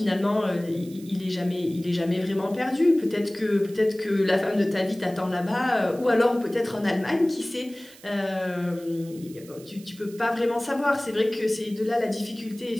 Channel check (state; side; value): noise; right; hiss, 22 dB below the sound